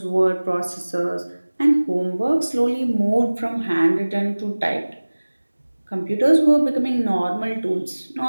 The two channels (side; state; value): both; inverted; correlation -1.00